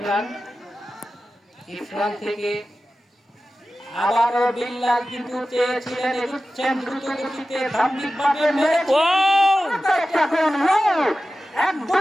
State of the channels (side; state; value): both; normal; correlation 0.94